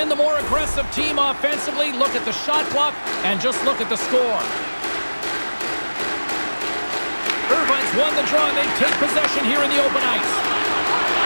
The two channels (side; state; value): both; inverted; correlation -1.00